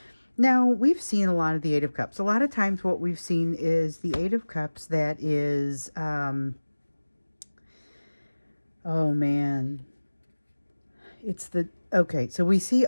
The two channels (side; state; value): both; inverted; correlation -1.00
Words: Now, we've seen a lot of the Eight of Cups. A lot of times what we've seen is the Eight of Cups that is, oh man, it's the, okay, so we see